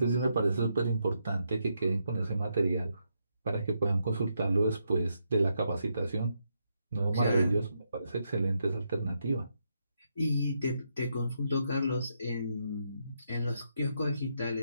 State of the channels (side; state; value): both; inverted; correlation -0.80